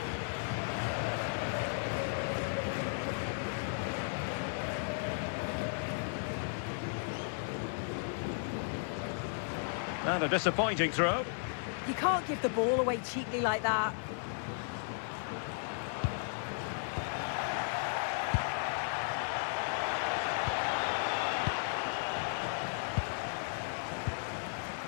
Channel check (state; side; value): silent; right; 54 dB below the other